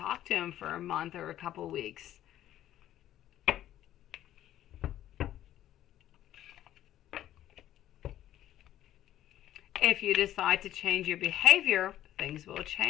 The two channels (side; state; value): right; quieter; 12.6 dB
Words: to him for a month or a couple weeks. If you decide to change your behavior, things will